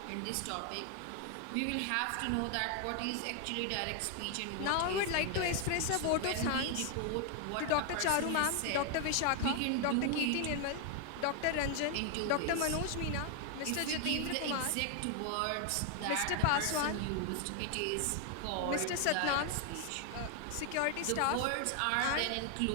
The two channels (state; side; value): different; both; correlation 0.00